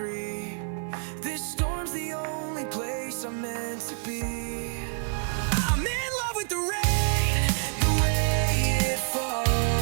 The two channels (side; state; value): left; silent; digital silence